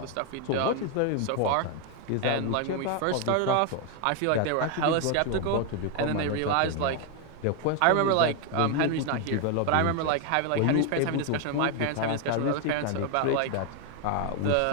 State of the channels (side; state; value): both; different; correlation 0.01